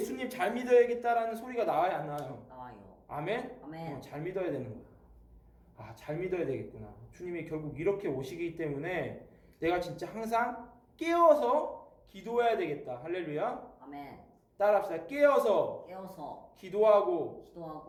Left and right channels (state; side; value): identical; both; correlation 1.00